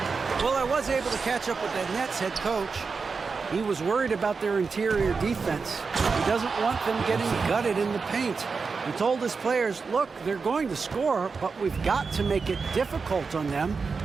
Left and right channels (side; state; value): left; quieter; 4.9 dB